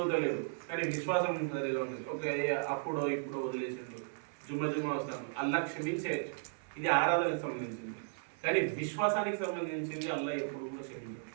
కానీ విశ్వాసం సరిగా ఉంది, ఒక అప్పుడో ఇప్పుడు వదిలేసిండు, జుమ్మ వస్తాను, అల్లా క్షమించేయచ్చు. ఇది ఆరాధనకు సంబంధించింది. కానీ విశ్వాసానికి సంబంధించింది అల్లా ఎప్పుడు కూడా క్షమించదు.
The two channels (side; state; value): left; silent; 54 dB below the other